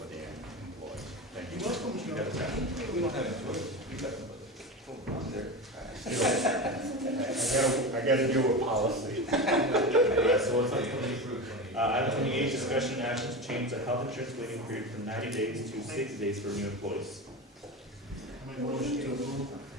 the employees. Thank you. You're welcome, Mr. You got that. We don't have a choice. We got them, on there. I gotta deal with policy. Yeah, so what's on item 28, discussion and action to change the health insurance waiting period from 90 days to 60 days for new employees. I make a motion to approve.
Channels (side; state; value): both; normal; correlation 0.23